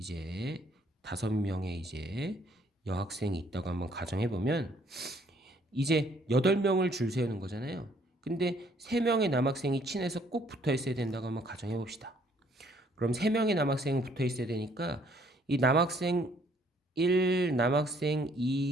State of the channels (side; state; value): both; normal; correlation 0.63